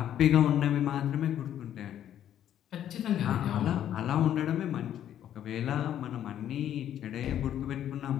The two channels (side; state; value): right; quieter; 10.8 dB